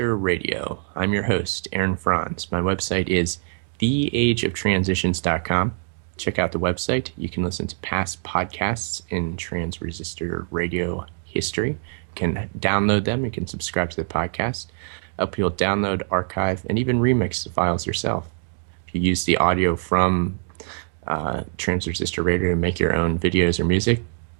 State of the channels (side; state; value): left; silent; digital silence